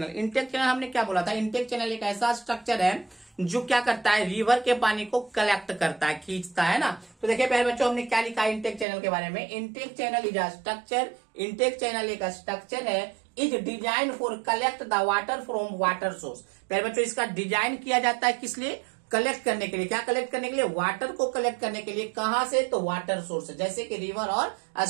इनटेक चैनल हमने क्या बोला था, इनटेक चैनल एक ऐसा स्ट्रक्चर है जो क्या करता है, रिवर के पानी को कलेक्ट करता है, खींचता है ना। तो देखिए प्यारे बच्चों, हमने क्या लिखा है इनटेक चैनल के बारे में, intake channel is a structure, intake channel एक स्ट्रक्चर है, is design for collect the water from water source. प्यारे बच्चों, इसका डिजाइन किया जाता है किस लिए, कलेक्ट करने के लिए। क्या कलेक्ट करने के लिए, वाटर को कलेक्ट करने के लिए। कहां से, तो वाटर सोर्स, जैसे कि रिवर और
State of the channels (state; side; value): drops out; left; at 8.8 s